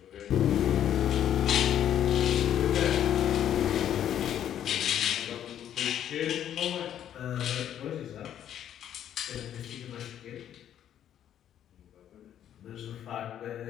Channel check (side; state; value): right; quieter; 10.4 dB